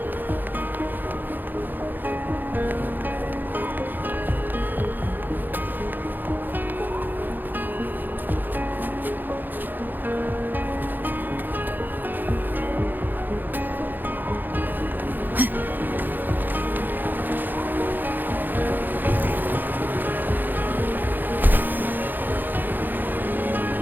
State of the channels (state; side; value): late; left; 0.088 ms